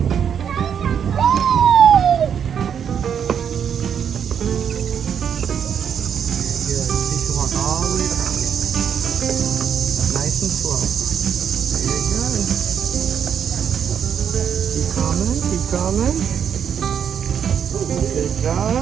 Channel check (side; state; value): left; quieter; 8.0 dB